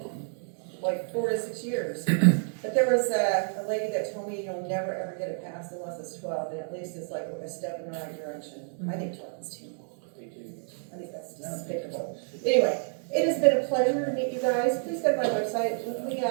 like 4 to 6 years. But there was a lady that told me you'll never ever get it passed unless it's 12, and at least it's like a step in the right direction. I think 12 is too long. I think that's despicable. Anyway, it has been a pleasure to meet you guys. Please go to my website. Give me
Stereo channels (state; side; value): silent; left; 58 dB below the other